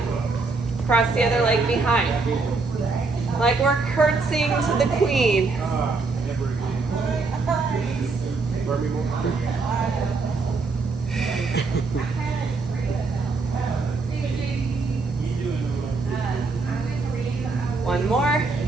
Cross the other leg behind. Like we're curtsying to the queen. One more.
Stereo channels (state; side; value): quieter; left; 4.0 dB